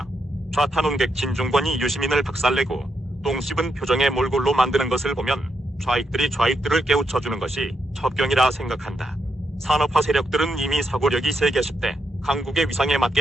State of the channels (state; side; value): normal; both; correlation 0.81